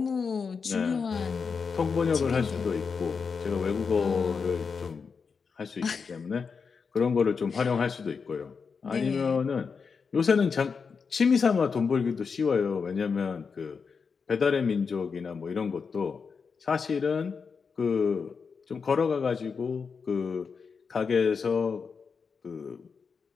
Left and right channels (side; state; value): right; quieter; 5.5 dB